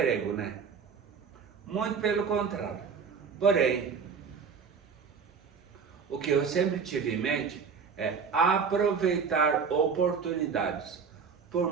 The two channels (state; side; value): quieter; left; 5.9 dB